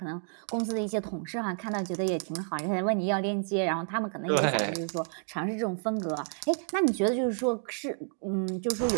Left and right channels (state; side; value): silent; left; 58 dB below the other